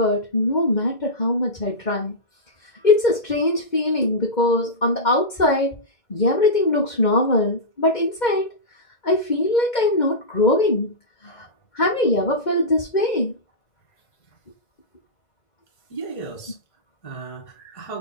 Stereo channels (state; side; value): late; right; 2.1 ms